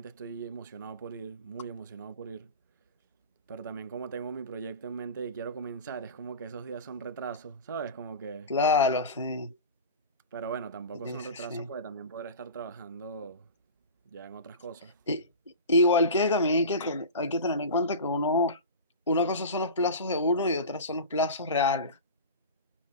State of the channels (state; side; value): inverted; both; correlation -0.30